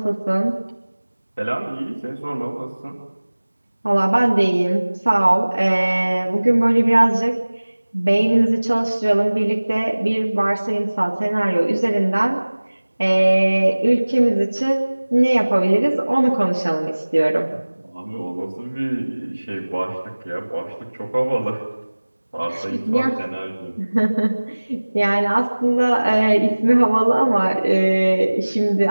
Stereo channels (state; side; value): inverted; both; correlation -1.00